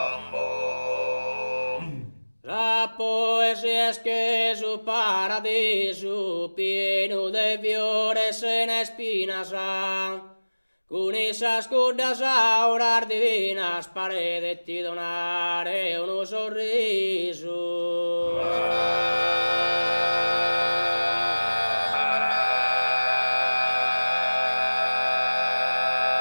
la poesia es que su para paradiso pieno de fiores en espinas, con esas cordas auras divinas paredes ti donare uno sorriso.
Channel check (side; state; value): both; inverted; correlation -1.00